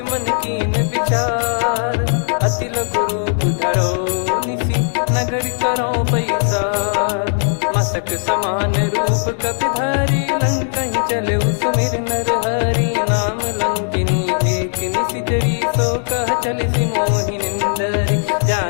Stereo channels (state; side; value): silent; right; digital silence